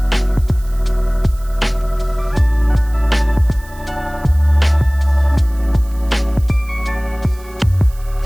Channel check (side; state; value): right; noise; hiss, 24 dB below the sound